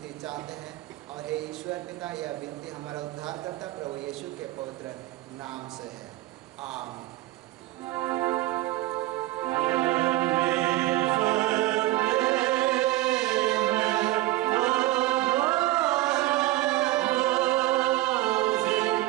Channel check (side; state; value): left; quieter; 17.0 dB